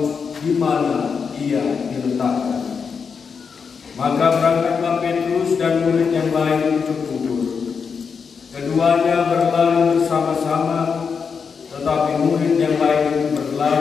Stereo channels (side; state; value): right; quieter; 5.9 dB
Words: di mana ia diletakkan." Maka berangkatlah Petrus dan murid yang lain ke kubur. Keduanya berlari bersama-sama, tetapi murid yang lain